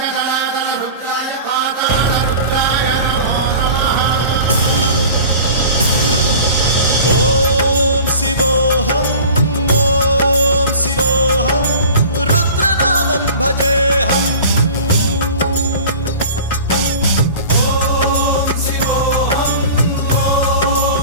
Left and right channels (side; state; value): both; inverted; correlation -0.39